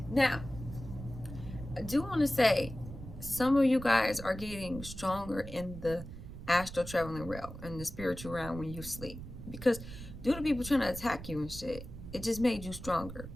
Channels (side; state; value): right; noise; rumble, 11 dB below the sound